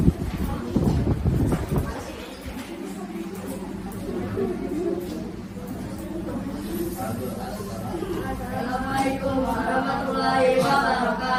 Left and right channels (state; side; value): identical; both; correlation 1.00